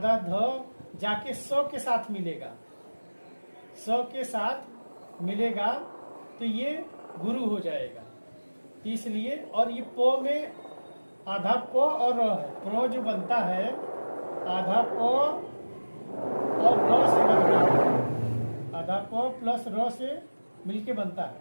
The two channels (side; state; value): both; inverted; correlation -1.00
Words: ध जाके 100 के साथ मिलेगा, 100 के साथ मिलेगा तो ये गुरु हो जाएगा। इसलिए और ये पो में आधा पो और र है। प्रो जो बनता है आधा पो और र से बनता है, आधा पो प्लस र से मिलके बनता